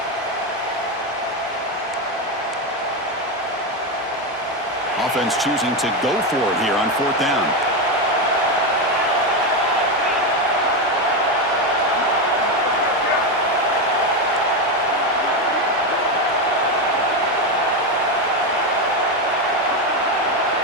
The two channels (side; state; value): both; normal; correlation 0.11